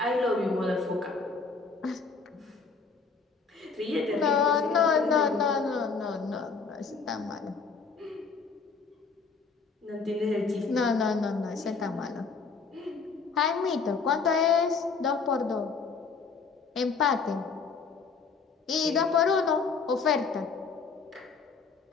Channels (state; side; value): quieter; right; 5.0 dB